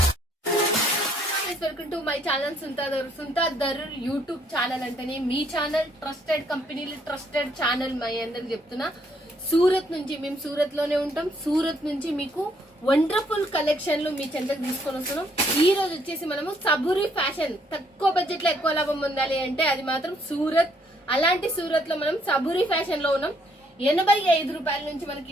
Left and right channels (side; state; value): both; normal; correlation 0.68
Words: Welcome to my channel Sunitha Darur YouTube channel అంటేనే మీ ఛానల్, ట్రస్టెడ్ కంపెనీలు, ట్రస్టెడ్ ఛానల్. మై అందరికి చెప్తున్నా, సూరత్ నుంచి మేము సూరత్ లోనే ఉంటాం. సూరత్ నుంచి మీకు వండర్ఫుల్ కలెక్షన్లు మీ చెంతకు తీసుకొని వస్తున్నాం. ఈ రోజు వచ్చేసి మనము సబూరి ఫ్యాషన్, తక్కువ బడ్జెట్ లో ఎక్కువ లాభం పొందాలి అంటే అది మాత్రం సూరత్. అలాంటి సూరత్ లో మనం సబూరి ఫ్యాషన్ లో ఉన్నాం. 85 రూపాయల నుంచి